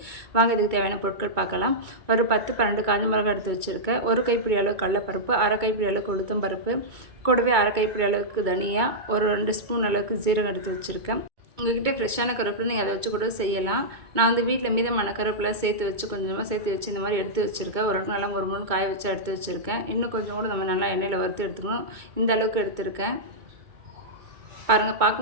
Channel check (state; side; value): late; left; 2.2 ms